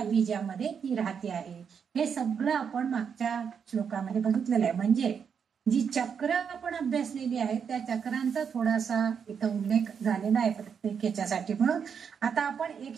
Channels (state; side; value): quieter; left; 6.9 dB